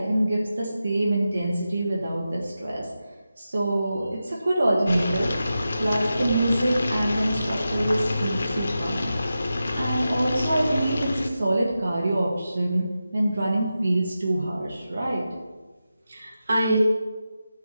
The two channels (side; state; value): both; inverted; correlation -0.91